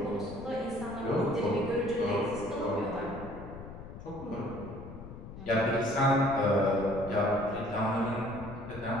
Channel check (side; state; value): left; noise; rumble, 13 dB below the sound